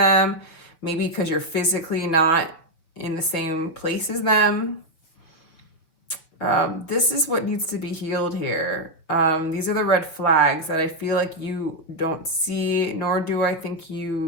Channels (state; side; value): late; right; 6.2 ms